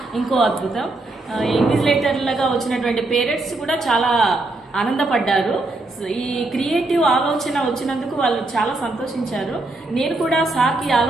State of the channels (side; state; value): left; quieter; 3.0 dB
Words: ఇంకో అద్భుతం. ఇన్విజిలేటర్లుగా వచ్చినటువంటి పేరెంట్స్ కూడా చాలా ఆనందపడ్డారు. ఈ క్రియేటివ్ ఆలోచన వచ్చినందుకు వాళ్ళు చాలా సంతోషించారు. నేను కూడా సార్కి